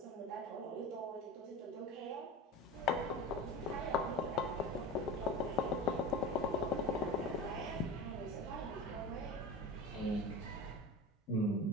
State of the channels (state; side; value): normal; both; correlation 0.30